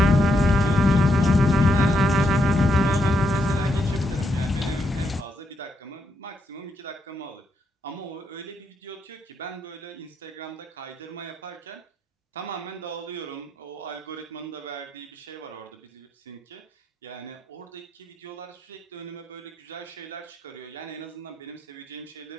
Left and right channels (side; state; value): both; normal; correlation 0.79